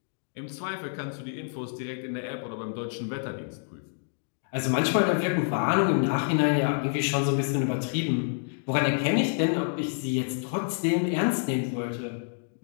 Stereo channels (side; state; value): right; silent; digital silence